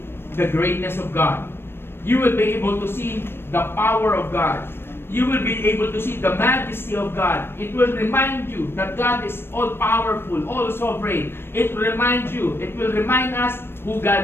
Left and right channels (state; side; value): late; right; 0.11 ms